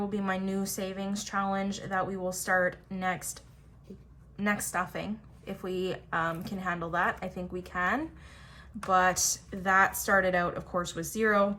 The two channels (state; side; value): identical; both; correlation 1.00